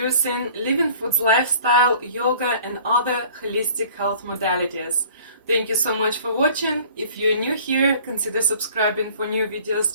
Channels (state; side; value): inverted; both; correlation -0.49